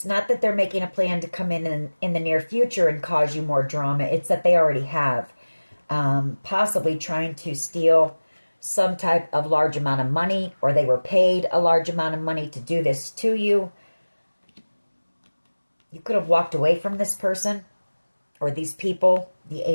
not that they're making a plan to come in the near future and cause you more drama, it's that they already have. Possibly trying to steal some type of large amount of money, or they were paid a large amount of money to do this to you. You could have walked away from this person or these people. The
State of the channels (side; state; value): both; inverted; correlation -1.00